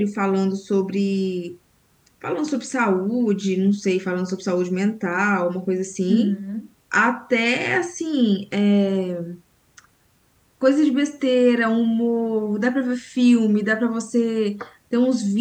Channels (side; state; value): both; identical; correlation 1.00